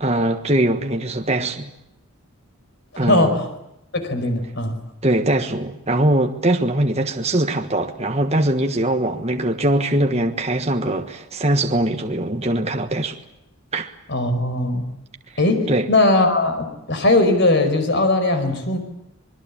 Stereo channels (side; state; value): both; normal; correlation 0.24